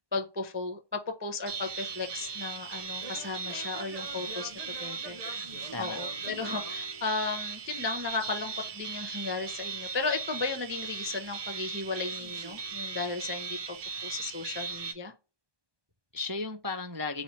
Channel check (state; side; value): late; left; 1.2 ms